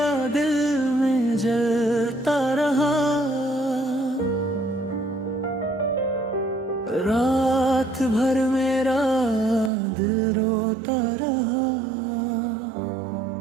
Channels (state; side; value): drops out; left; at 9.7 s